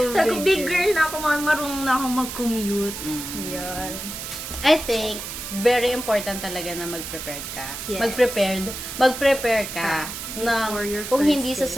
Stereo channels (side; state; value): right; noise; hiss, 8 dB below the sound